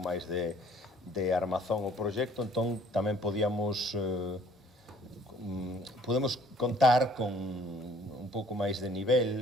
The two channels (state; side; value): normal; both; correlation 0.57